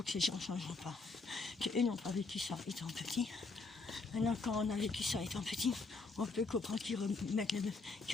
que ces gens ne changeront pas, qu'eux n'ont pas vécu ça étant petit. Maintenant, quand on a vécu ça étant petit, on peut comprendre qu'ils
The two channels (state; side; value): quieter; right; 3.8 dB